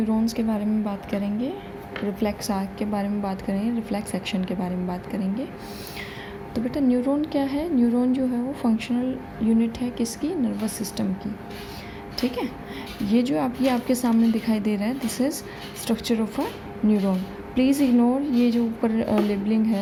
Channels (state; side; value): identical; both; correlation 1.00